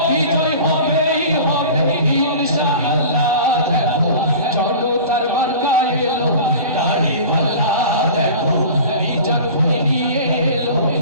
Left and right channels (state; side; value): inverted; both; correlation -0.38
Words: ইনশাআল্লাহ। দেখো জনতার মার্কা এলো দাড়ি পাল্লা, দেখো মিজান ভাই নিয়ে এলো